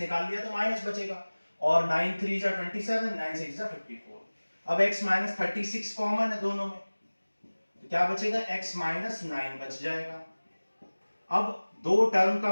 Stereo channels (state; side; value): inverted; both; correlation -1.00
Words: लिया तो माइनस बचेगा, और 9 3 जा 27, 9 6 जा 54। अब x माइनस 36 कॉमन है दोनों में, तो क्या बचेगा x माइनस 9 बच जाएगा। अब दो टर्म का